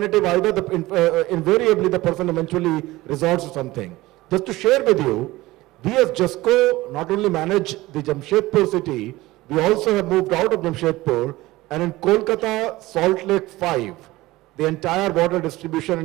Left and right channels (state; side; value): quieter; left; 18.7 dB